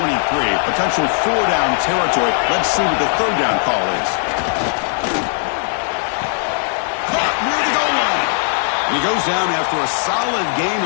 Potential 4-down territory. Let's see what the 3rd down call is. Caught near the goal line. And he goes down after a solid gain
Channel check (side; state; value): right; silent; 67 dB below the other